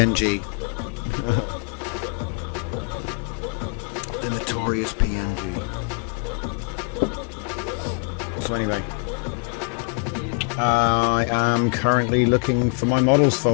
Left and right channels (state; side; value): quieter; right; 37.2 dB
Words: The notorious PNG. So anyway, I am currently looking for my models